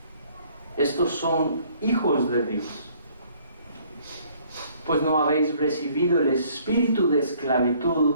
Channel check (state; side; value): inverted; both; correlation -0.60